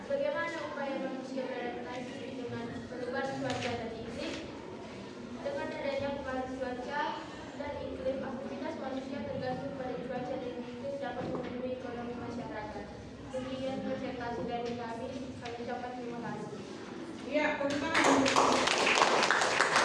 bagaimana upaya manusia beradaptasi dengan perubahan cuaca dan iklim? Dengan adanya pengaruh cuaca dan iklim, aktivitas manusia tergantung pada cuaca dan iklim dapat memenuhi ekonomi masyarakat. Demikian presentasi dari kami ucapkan terima kasih. Iya, tentang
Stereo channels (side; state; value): both; identical; correlation 1.00